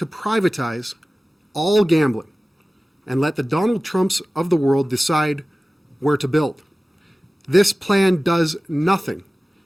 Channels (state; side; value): normal; both; correlation 0.97